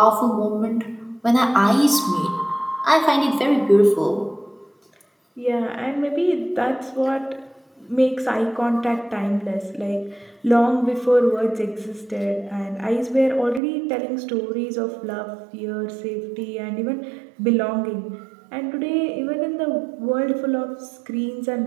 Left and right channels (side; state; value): left; drops out; at 13.6 s